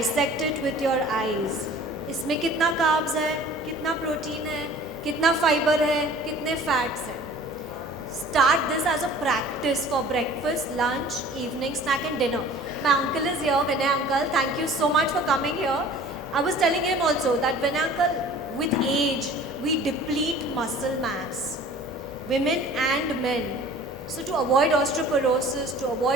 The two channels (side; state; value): both; normal; correlation 0.47